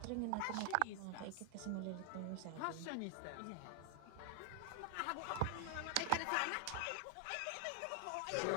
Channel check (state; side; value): different; both; correlation 0.00